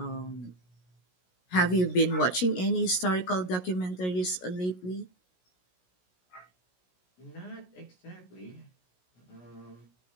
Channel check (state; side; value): late; right; 16 ms